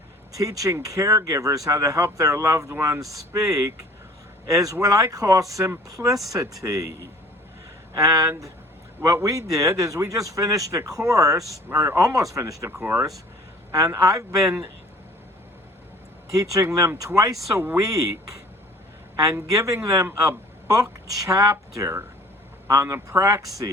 teaching caregivers how to help their loved ones speak, is what I call simplicity. And what we did is we just finished a course, or almost finished a course, and I've been teaching them twice a week and giving them a book chapter on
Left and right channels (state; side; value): normal; both; correlation 0.50